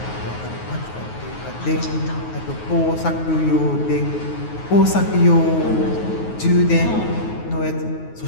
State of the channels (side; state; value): right; late; 9.4 ms